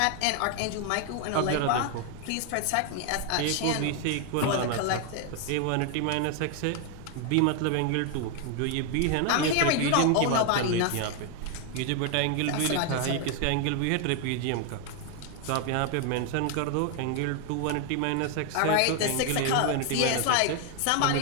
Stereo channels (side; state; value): both; different; correlation 0.01